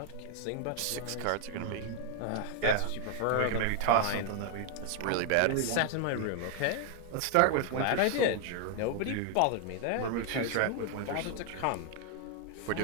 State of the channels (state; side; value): different; both; correlation 0.00